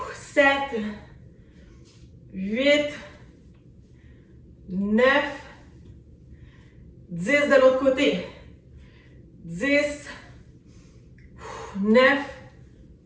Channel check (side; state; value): both; identical; correlation 1.00